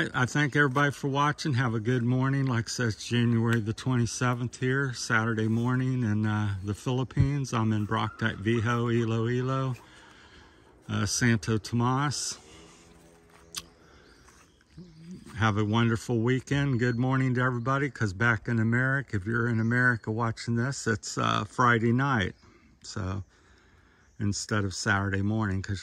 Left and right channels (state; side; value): identical; both; correlation 1.00